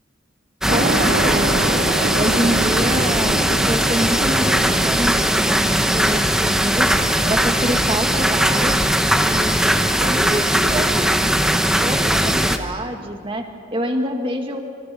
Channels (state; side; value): normal; both; correlation 0.72